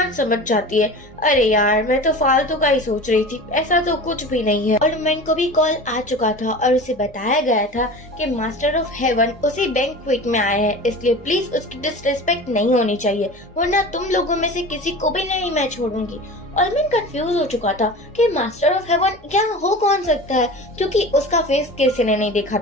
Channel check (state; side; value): normal; both; correlation 0.35